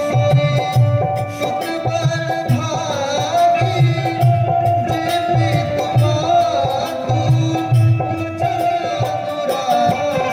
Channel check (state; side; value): identical; both; correlation 1.00